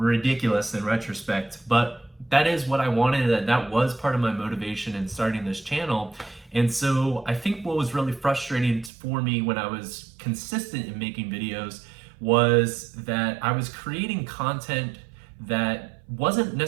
in retrospect, but that is what I wanted. That was part of my motivation in starting this channel. And so I think what was really frustrating for me when I was consistent in making videos was that I was creating content that wasn't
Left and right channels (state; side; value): drops out; left; at 8.9 s